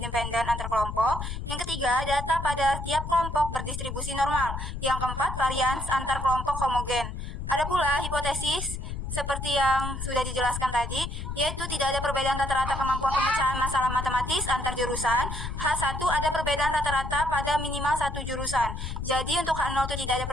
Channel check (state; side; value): noise; left; rumble, 6 dB below the sound